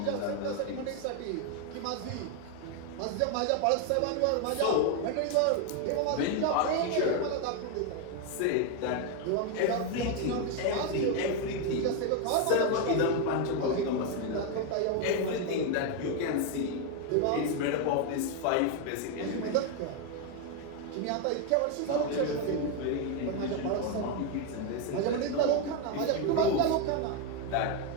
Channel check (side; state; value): both; different; correlation 0.01